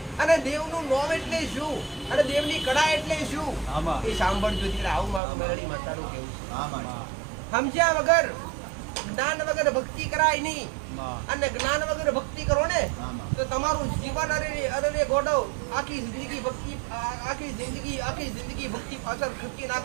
અને દેવનું નામ એટલે શું, અને દેવની કળા એટલે શું, એ સાંભળજો દીકરા. આવું મારું મેલડી માતાનું કહેવું છે. સમજ્યા વગર, જ્ઞાન વગર ભક્તિ કરાય નહીં, અને જ્ઞાન વગર ભક્તિ કરો ને તો તમારું જીવન અરે ગોડો આખી જિંદગી ભક્તિ પાછળ ખર્ચી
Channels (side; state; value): left; drops out; at 5.2 s